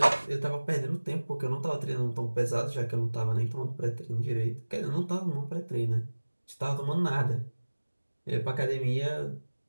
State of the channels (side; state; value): both; inverted; correlation -1.00